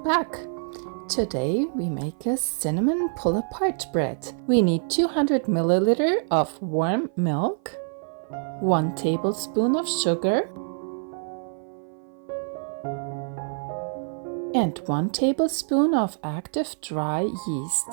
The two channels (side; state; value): left; silent; 55 dB below the other